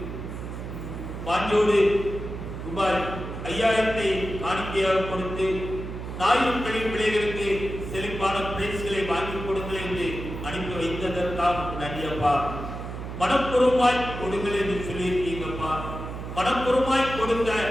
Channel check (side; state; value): right; noise; hum, 8 dB below the sound